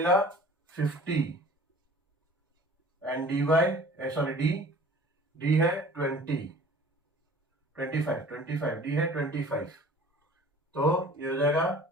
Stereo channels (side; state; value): both; normal; correlation 0.46